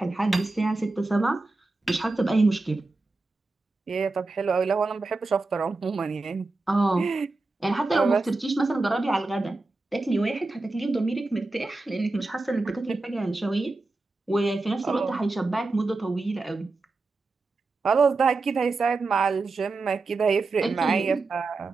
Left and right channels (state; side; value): quieter; left; 3.4 dB